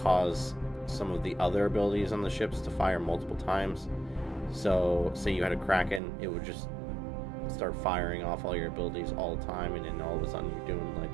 some of the other abilities on the ships to fire multiple times. So say you had a Kraken, it would just start firing off all your abilities all the time, and then all of a sudden you're doing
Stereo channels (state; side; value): drops out; left; at 6.0 s